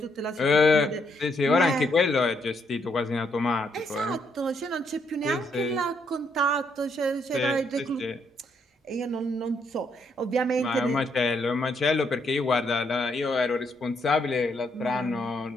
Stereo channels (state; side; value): normal; both; correlation 0.74